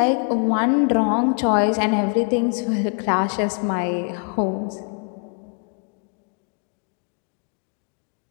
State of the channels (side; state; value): right; quieter; 37.3 dB